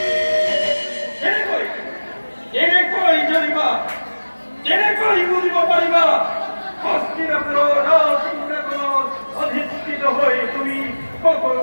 জেনে কই বুঝিব পারিবা হস্তিনাপুর রাজসিংহাসন অধিষ্ঠিত হয়ে তুমি কখন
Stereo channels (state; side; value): inverted; both; correlation -1.00